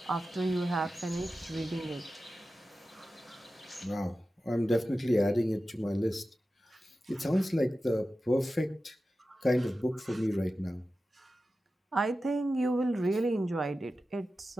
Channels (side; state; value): both; normal; correlation 0.93